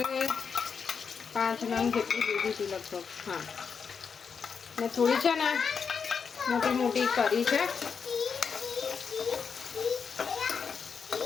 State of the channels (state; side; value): quieter; right; 6.1 dB